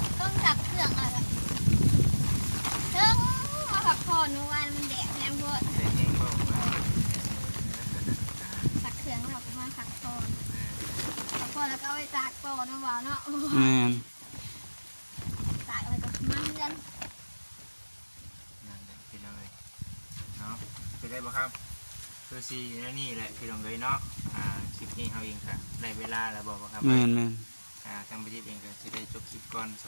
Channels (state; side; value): inverted; both; correlation -1.00